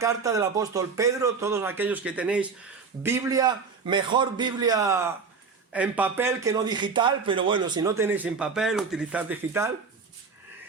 del apóstol Pedro. Todos aquellos que tenéis Biblia, mejor Biblia en papel que no digital, pero bueno, si no tenéis en papel, utilizad digital.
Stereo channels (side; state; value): left; quieter; 5.1 dB